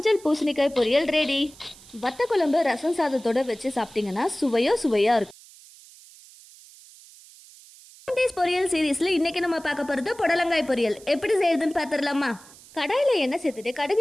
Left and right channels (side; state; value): right; noise; hiss, 22 dB below the sound